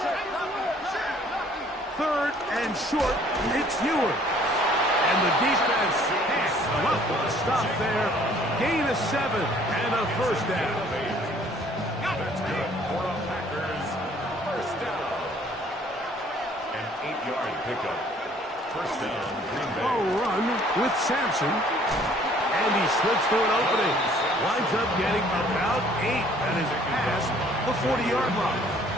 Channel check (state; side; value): normal; both; correlation 0.58